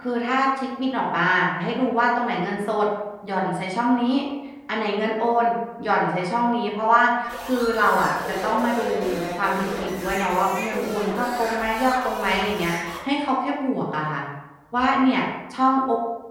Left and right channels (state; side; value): identical; both; correlation 1.00